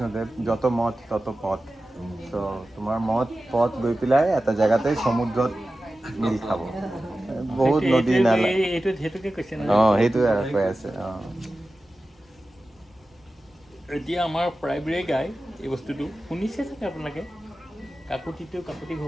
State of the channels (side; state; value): both; normal; correlation 0.94